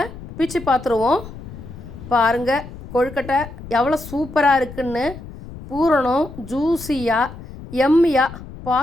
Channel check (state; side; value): noise; left; rumble, 14 dB below the sound